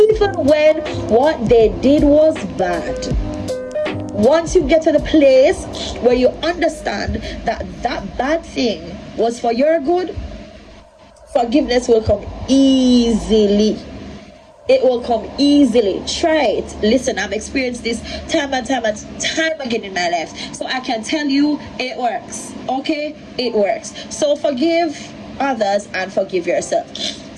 when what they did was bad, once you get to the place where you understand that that bad thing was for your good, forgiveness will come easily. It will come easily. Try it. Listen, I've experienced this time and time again in my life, so I can tell you it works. Okay, it works. So forgive others and forgive yourself.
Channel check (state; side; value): identical; both; correlation 1.00